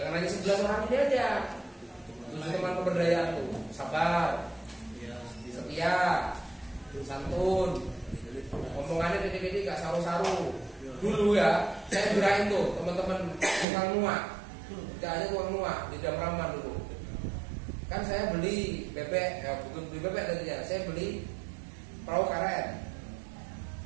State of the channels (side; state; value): left; drops out; at 13.7 s